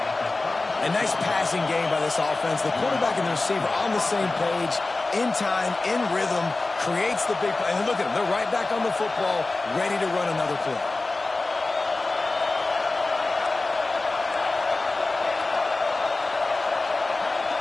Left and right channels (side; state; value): right; quieter; 3.3 dB